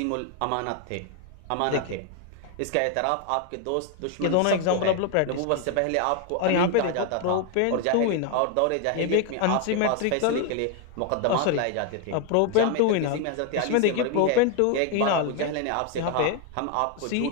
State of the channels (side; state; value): both; different; correlation 0.01